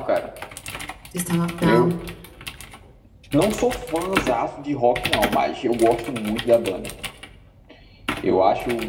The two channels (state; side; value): identical; both; correlation 1.00